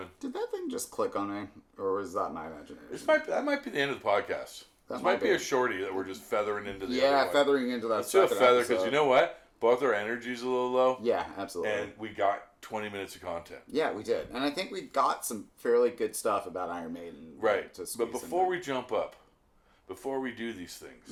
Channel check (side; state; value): both; identical; correlation 1.00